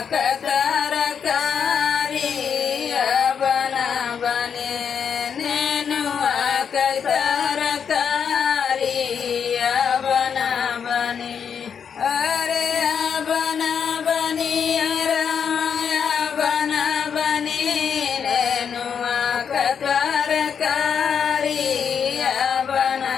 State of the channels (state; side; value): quieter; right; 7.2 dB